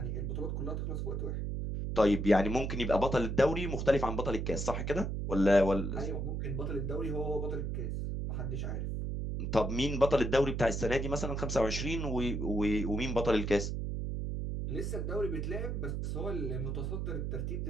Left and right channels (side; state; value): right; noise; hum, 2 dB below the sound